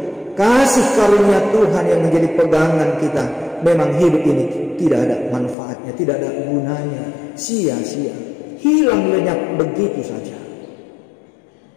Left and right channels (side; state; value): right; drops out; at 5.6 s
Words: kasih karunia Tuhan yang menjadi pegangan kita, memang hidup ini tidak ada manfaatnya, tidak ada gunanya, sia-sia, hilang lenyap begitu saja.